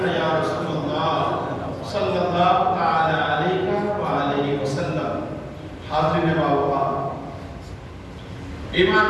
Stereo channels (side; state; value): both; identical; correlation 1.00